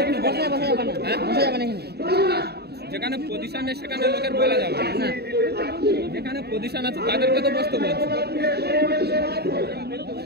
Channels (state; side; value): late; left; 0.47 ms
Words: যেখানে পজিশন নেই সেখানে লোকের বলা যাবে না, যেখানে পজিশন আছে তাদেরকে তো বসতে বলছে।